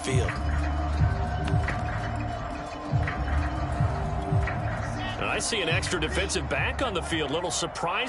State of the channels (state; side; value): identical; both; correlation 1.00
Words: field. I see an extra defensive back on the field. Little